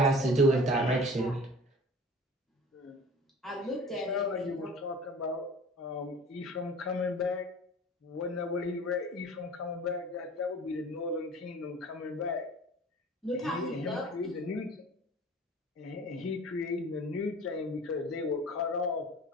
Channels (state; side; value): normal; both; correlation 0.43